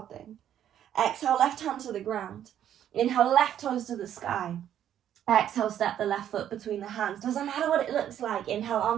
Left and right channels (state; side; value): quieter; left; 10.4 dB